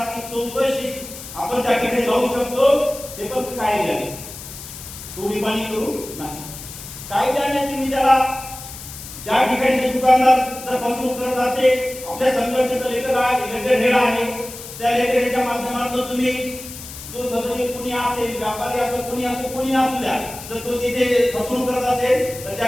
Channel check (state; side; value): noise; left; hiss, 13 dB below the sound